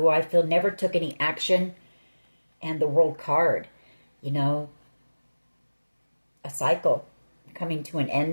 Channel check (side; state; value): both; inverted; correlation -1.00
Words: I feel never took any action. And the World card, you know. A cycle coming to an